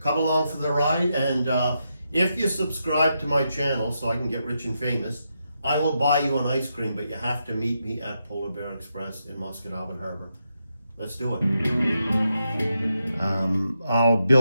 along for the ride. And if you subscribe to my channel so I can get rich and famous, I will buy you an ice cream, but you have to meet me at Polar Bear Express in Musquodoboit Harbour. Let's do it. I'll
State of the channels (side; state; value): both; inverted; correlation -0.84